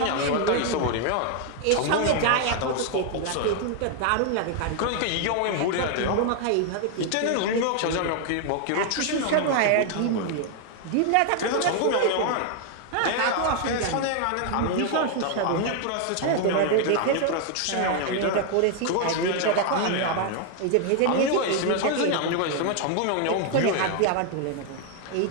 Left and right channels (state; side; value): different; both; correlation 0.00